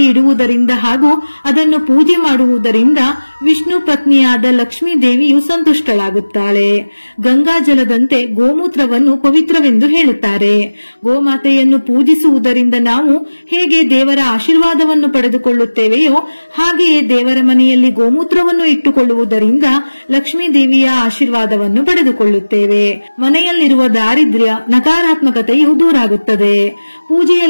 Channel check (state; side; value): inverted; both; correlation -1.00